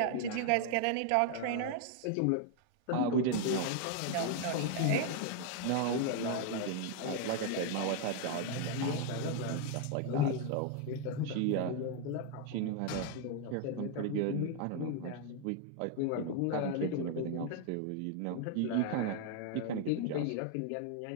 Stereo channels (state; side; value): different; both; correlation 0.00